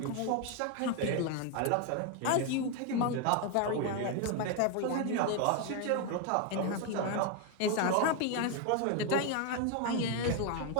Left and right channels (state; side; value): different; both; correlation 0.01